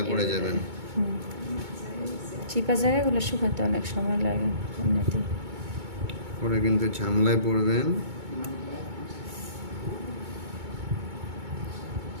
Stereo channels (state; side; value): late; left; 2.2 ms